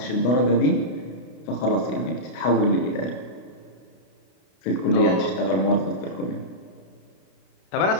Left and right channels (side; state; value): right; late; 32 ms